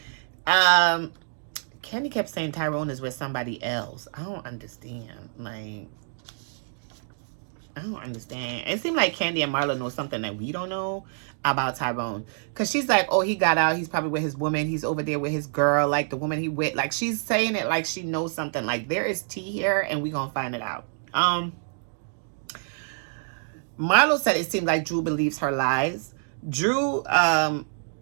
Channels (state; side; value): silent; left; 60 dB below the other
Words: Kandi kept saying Tyrone is with somebody else. I don't understand. Like, I don't understand. It seemed like Kandi and Marlo know something that we don't know about Tyrone. Because she's like, oh, he got out. He's probably with his woman. He's over there with his girl, like the woman he with. Like, she's saying it like she knows something. Like, there is tea here, and we going to find it out. Marlo said it seemed like Drew believes her lies. Drew